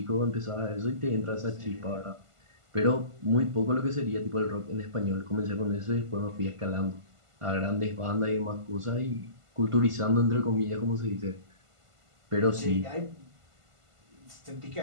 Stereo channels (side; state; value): left; late; 1.5 ms